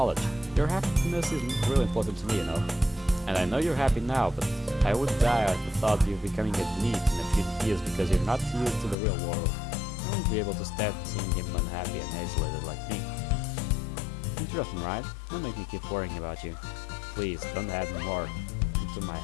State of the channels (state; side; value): drops out; right; at 9.0 s